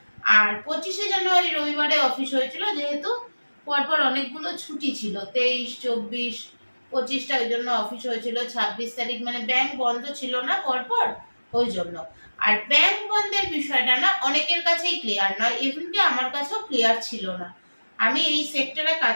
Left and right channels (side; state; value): both; inverted; correlation -1.00